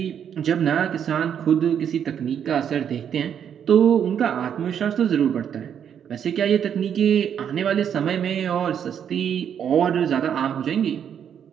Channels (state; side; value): quieter; left; 8.5 dB